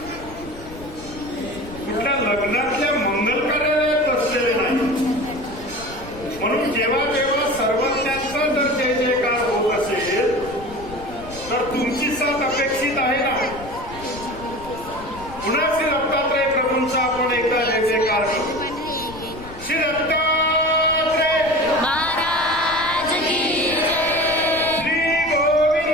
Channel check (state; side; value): noise; left; rumble, 16 dB below the sound